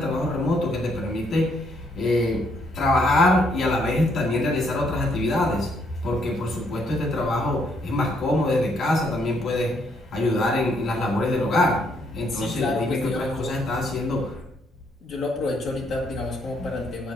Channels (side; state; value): both; normal; correlation 0.71